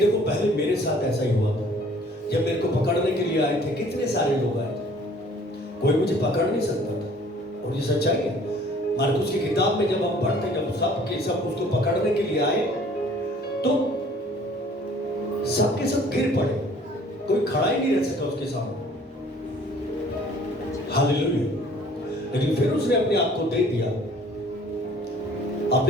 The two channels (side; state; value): both; normal; correlation 0.54